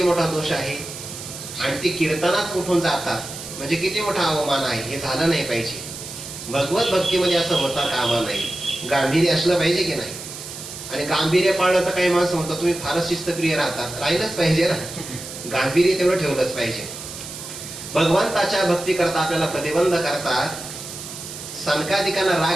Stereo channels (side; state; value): right; noise; hiss, 11 dB below the sound